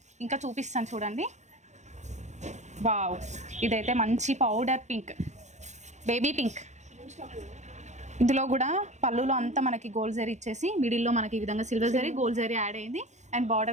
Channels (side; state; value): left; late; 0.34 ms